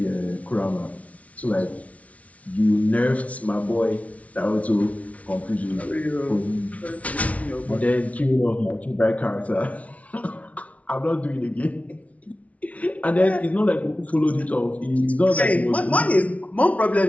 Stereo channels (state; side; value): late; right; 0.067 ms